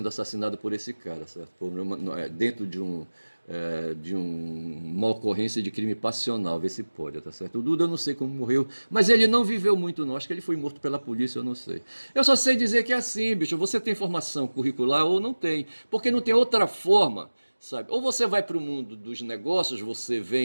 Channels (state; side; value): inverted; both; correlation -1.00